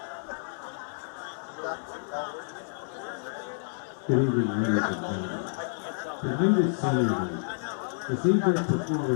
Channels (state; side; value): silent; right; 58 dB below the other